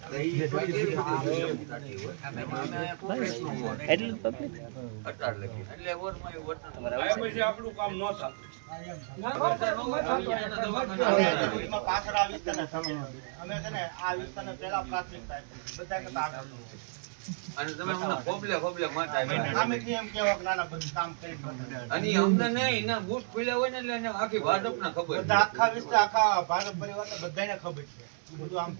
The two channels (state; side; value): silent; left; digital silence